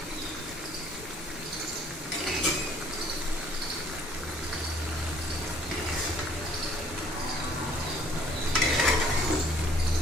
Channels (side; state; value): both; normal; correlation 0.59